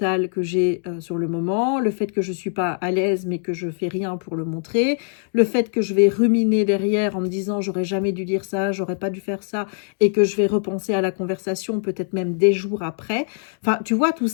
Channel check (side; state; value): right; silent; digital silence